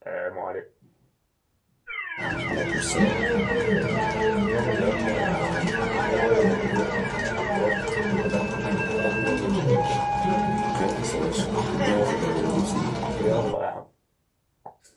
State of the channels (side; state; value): both; identical; correlation 1.00